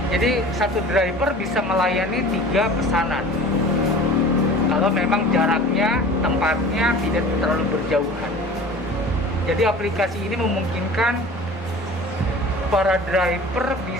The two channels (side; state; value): both; normal; correlation 0.41